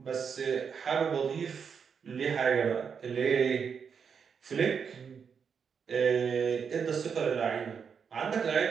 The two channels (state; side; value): quieter; left; 6.6 dB